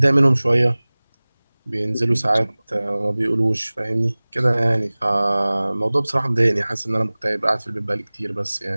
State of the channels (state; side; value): inverted; both; correlation -1.00